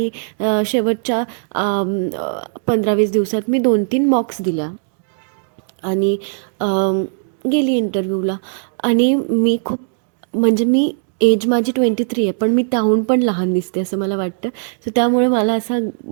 शेवटच्या 15-20 दिवसात मी 2-3 मॉक्स दिल्या आणि गेली इंटरव्ह्यूला. आणि मी खूप, म्हणजे मी एज माझी 23 आहे, पण मी त्याहून पण लहान दिसते असं मला वाटतं. सो त्यामुळे मला असा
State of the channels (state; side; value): silent; left; digital silence